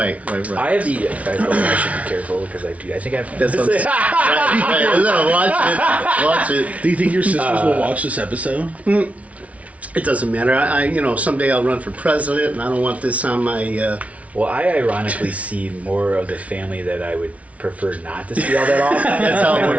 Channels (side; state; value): left; late; 0.066 ms